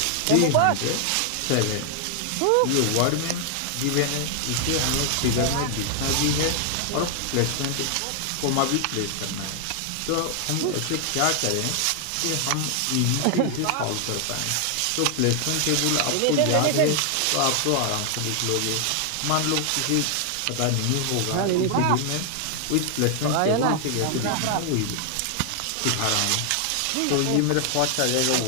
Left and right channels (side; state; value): both; different; correlation 0.00